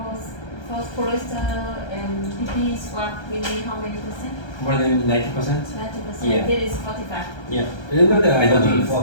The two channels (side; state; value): right; late; 1.3 ms